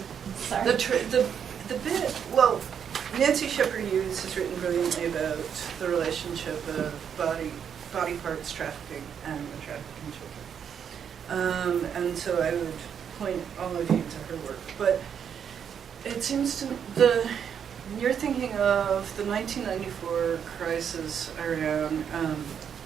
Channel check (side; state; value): left; quieter; 7.9 dB